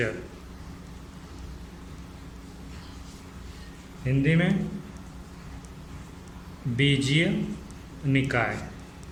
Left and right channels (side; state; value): both; identical; correlation 1.00